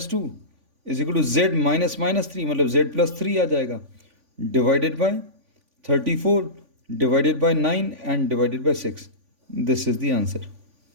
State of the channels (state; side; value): late; left; 3.5 ms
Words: 2 is equal to z -3, मतलब z+3 आ जाएगा, divided by 34 divided by 9 and divided by 6. This is the answer.